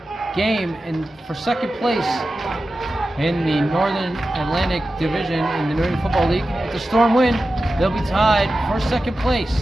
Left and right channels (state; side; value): normal; both; correlation 0.93